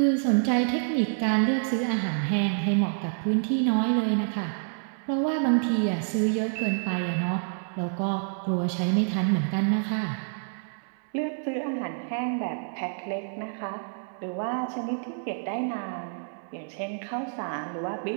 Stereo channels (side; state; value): left; silent; 59 dB below the other